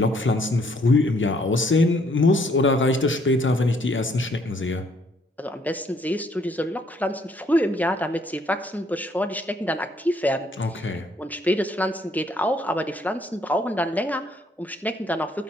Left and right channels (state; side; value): normal; both; correlation 0.66